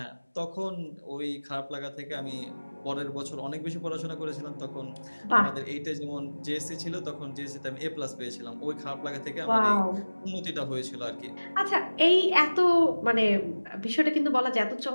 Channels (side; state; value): both; inverted; correlation -1.00